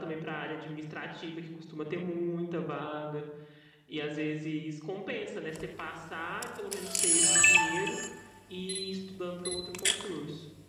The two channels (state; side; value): identical; both; correlation 1.00